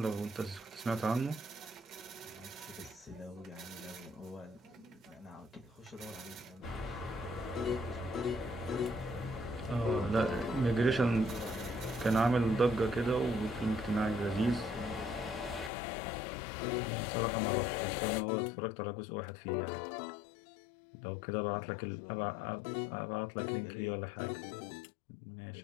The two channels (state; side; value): drops out; right; at 15.7 s